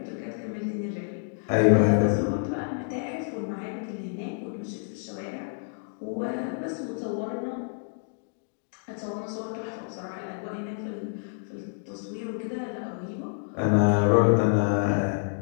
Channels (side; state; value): right; silent; digital silence